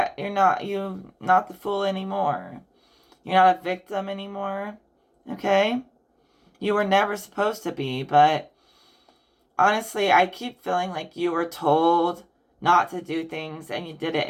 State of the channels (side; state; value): both; identical; correlation 1.00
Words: not the fool anymore. You're not a victim anymore. Okay? You were never supposed to be, but honestly, I keep feeling like you were told not to do things and you did it